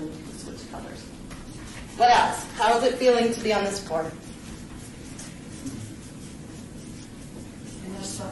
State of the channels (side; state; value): both; identical; correlation 1.00